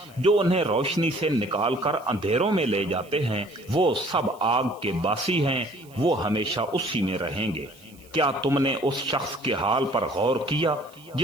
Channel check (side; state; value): right; noise; hiss, 26 dB below the sound